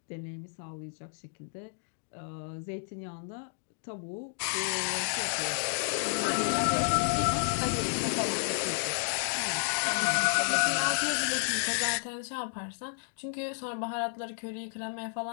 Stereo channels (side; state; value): right; silent; digital silence